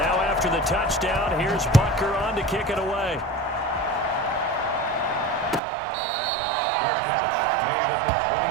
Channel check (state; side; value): drops out; left; at 5.6 s